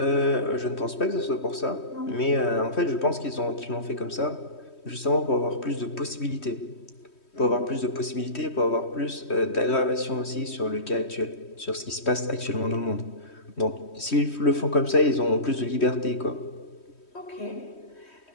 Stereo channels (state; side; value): late; right; 3.1 ms